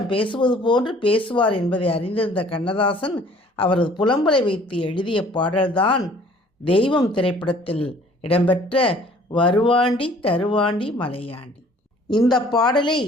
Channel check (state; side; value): normal; both; correlation 0.54